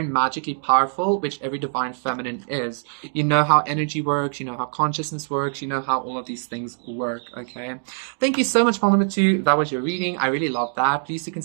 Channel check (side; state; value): left; silent; digital silence